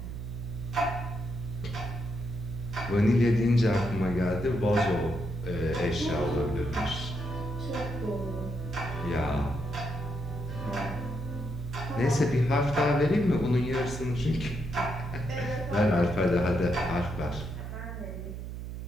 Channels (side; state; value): right; noise; hum, 7 dB below the sound